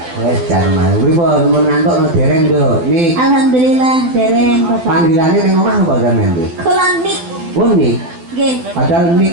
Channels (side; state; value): left; late; 12 ms